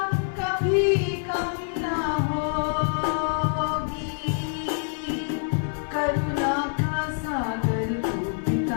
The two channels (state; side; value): silent; right; digital silence